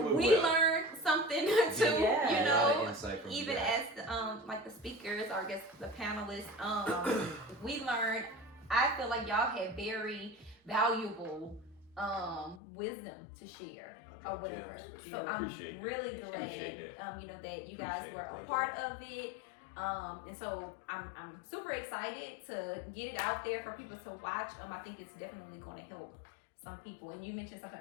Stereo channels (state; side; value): drops out; right; at 12.6 s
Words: went we well. learned something too. You A lot know, of insight from even you guys. as like the speakers or I guess the panelists, we learned. I feel like y'all had very valuable wisdom to share or whatever. So I'm Appreciate it. really Appreciate glad, you know, that you guys Appreciate were it. a Thank part of it. And so I'm super excited to get it out there for people to watch. I think it's definitely going to help some people. And you mentioned something